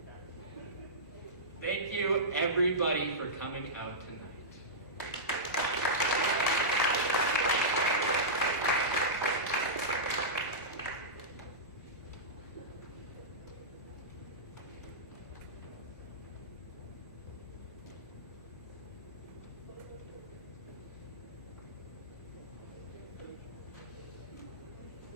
Thank you, everybody, for coming out tonight.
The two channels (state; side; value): normal; both; correlation -0.15